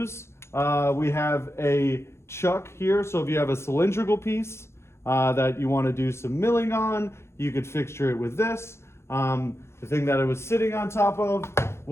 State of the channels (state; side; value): late; right; 0.13 ms